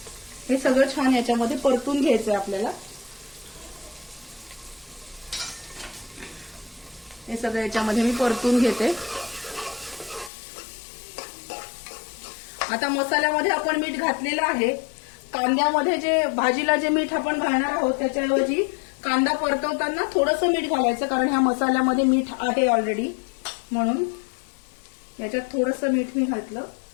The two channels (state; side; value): drops out; right; at 10.3 s